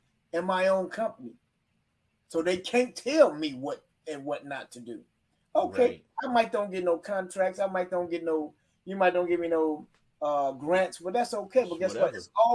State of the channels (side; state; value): both; identical; correlation 1.00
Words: and my own company. So they can't tell me what and what not to do. Okay, right. I might don't get no contracts. You might don't give me no grants, but that's okay. But guess what? It's